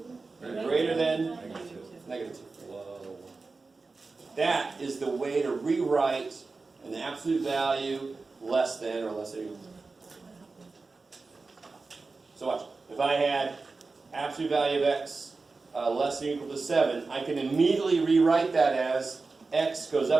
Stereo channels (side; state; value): left; quieter; 3.9 dB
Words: and greater than negative 2. That is the way to rewrite an absolute value less than or less than or equal to. So watch. If I had absolute value of x less than or equal to 7, I can immediately rewrite that as x goes